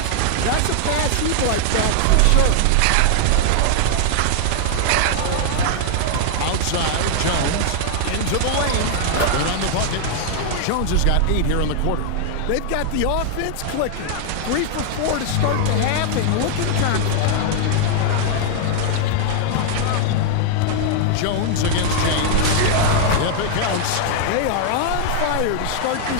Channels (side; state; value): both; different; correlation 0.00